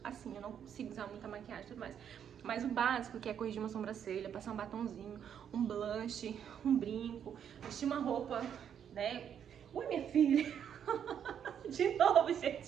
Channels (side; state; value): left; quieter; 8.7 dB